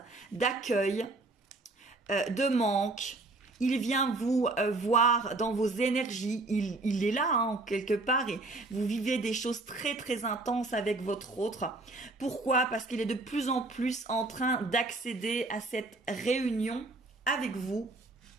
d'accueil, de manque. Il vient vous voir dans vos énergies. Il est là, quelque part. Et vous vivez des choses très, très intenses avec votre autre. Pourquoi? Parce qu'il est de plus en plus en train d'accéder à cette réunion avec vous.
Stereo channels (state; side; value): quieter; left; 3.2 dB